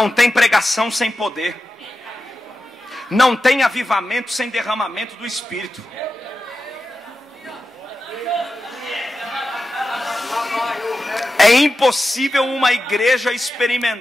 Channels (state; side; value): normal; both; correlation 0.92